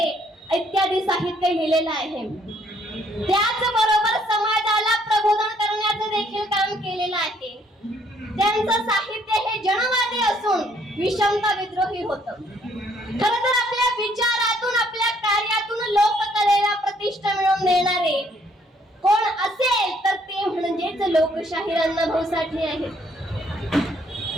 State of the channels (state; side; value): normal; both; correlation 0.66